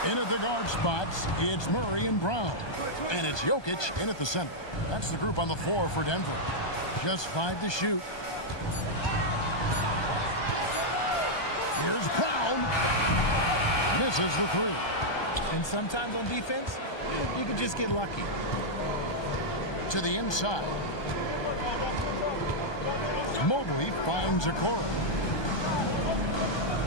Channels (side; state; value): right; late; 1.2 ms